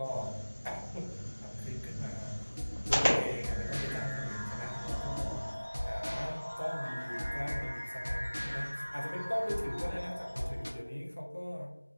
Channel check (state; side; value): inverted; both; correlation -1.00